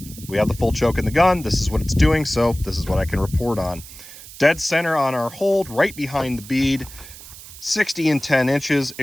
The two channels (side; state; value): right; noise; hiss, 16 dB below the sound